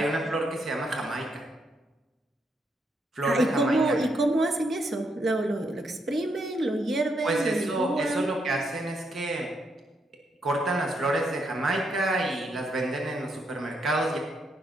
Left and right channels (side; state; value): both; normal; correlation 0.77